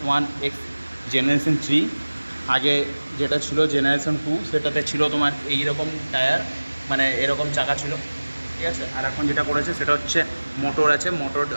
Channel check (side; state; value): both; inverted; correlation -1.00